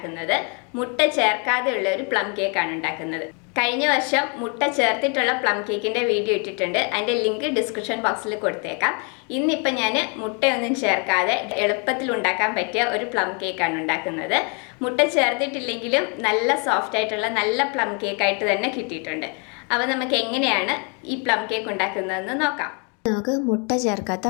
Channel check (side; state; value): right; quieter; 35.9 dB